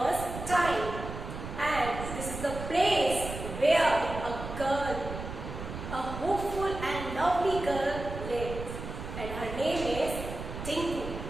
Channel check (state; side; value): noise; right; rumble, 8 dB below the sound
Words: time, and this is the place where a girl, a hopeful and lovely girl lives, and her name is Tinku.